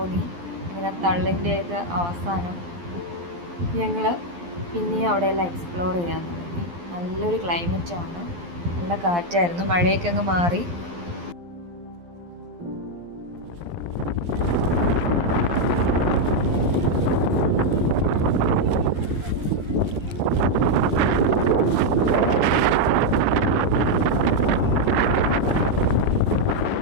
അങ്ങനെ തള്ളിൻ്റെയൊക്കെ അവസാനം ഞങ്ങൾ പിന്നെയും അവിടെയെല്ലാം എക്സ്പ്ലോർ ചെയ്യാൻ തുടങ്ങി. നല്ലൊരു ക്ലൈമറ്റാണ്, നല്ല കാറ്റായിരുന്നു, മഴയൊക്കെ അങ്ങ് മാറി.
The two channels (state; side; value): late; left; 12 ms